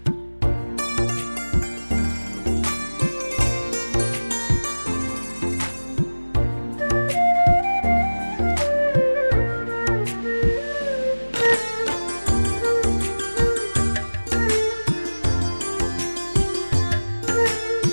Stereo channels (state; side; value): inverted; both; correlation -1.00